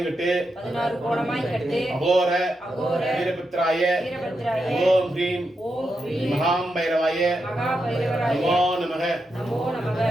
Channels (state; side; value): normal; both; correlation 0.86